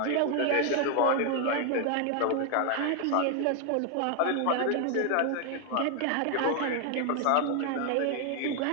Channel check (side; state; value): both; different; correlation 0.00